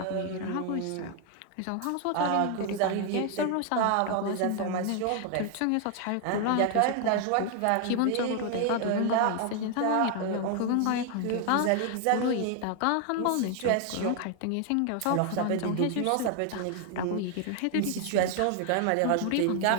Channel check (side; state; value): both; different; correlation 0.00